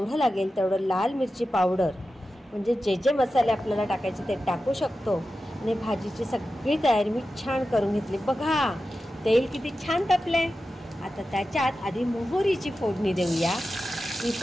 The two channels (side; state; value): both; normal; correlation 0.92